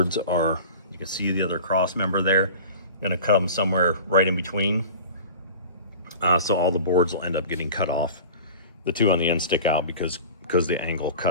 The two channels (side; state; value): both; inverted; correlation -0.37